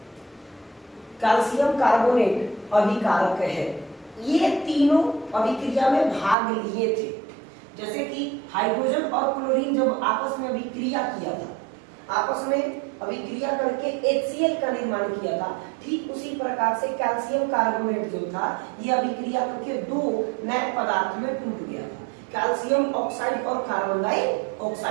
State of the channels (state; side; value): drops out; left; at 6.4 s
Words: कैल्शियम कार्बोनेट अभिकारक है। ये तीनों अभिक्रिया में भाग लिए थे। जैसे कि हाइड्रोजन और क्लोरीन जब आपस में अभिक्रिया किया था, आपस में अभिक्रिया करके HCl का निर्माण किया था, ठीक उसी प्रकार से कैल्शियम कार्बोनेट जो था ये अभिक्रिया करके दो नए पदार्थ में टूट गया था, कैल्शियम ऑक्साइड और कार्बन